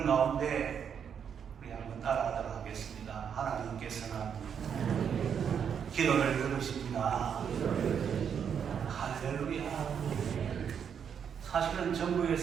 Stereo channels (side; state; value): left; quieter; 7.6 dB